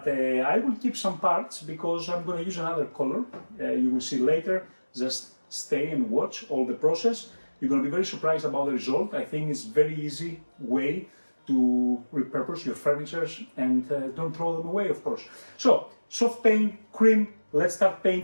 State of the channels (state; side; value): inverted; both; correlation -1.00